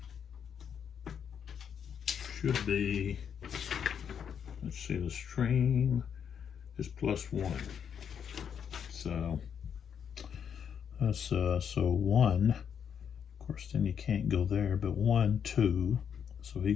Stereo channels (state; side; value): quieter; right; 7.8 dB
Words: should be, let's see, the stream is +1. So that's so 1. Of course, then you can't go there, but 1, 2. So he